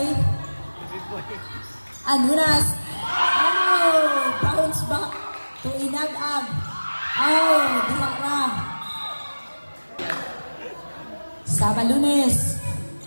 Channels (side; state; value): both; inverted; correlation -1.00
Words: Andunas. Oh! Bounce back to Inagag. Oh! Disakra. Sabalunes.